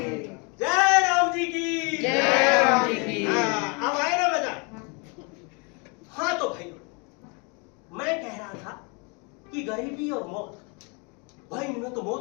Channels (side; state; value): right; quieter; 32.3 dB